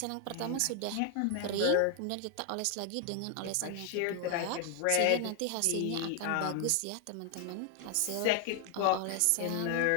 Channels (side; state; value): both; different; correlation 0.00